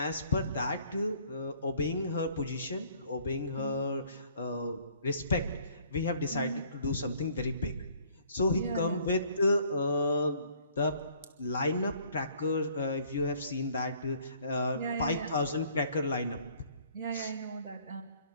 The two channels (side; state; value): both; inverted; correlation -0.59